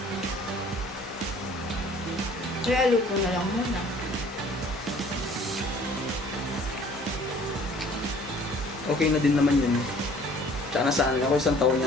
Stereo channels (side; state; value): both; normal; correlation 0.54